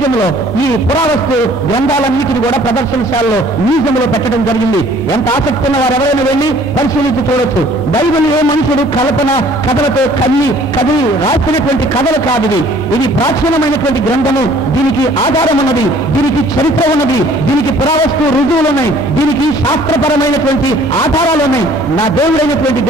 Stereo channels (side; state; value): both; normal; correlation 0.55